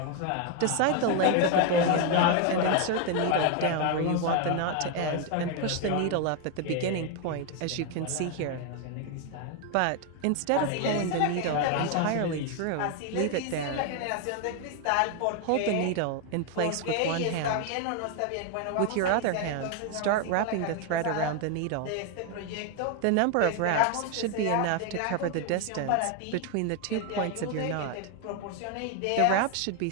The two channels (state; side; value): different; both; correlation 0.01